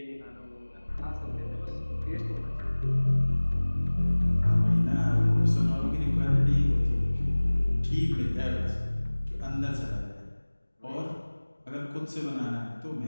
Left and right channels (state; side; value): inverted; both; correlation -1.00